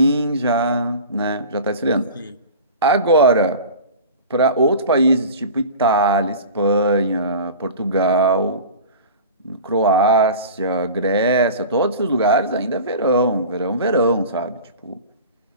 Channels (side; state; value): both; inverted; correlation -0.36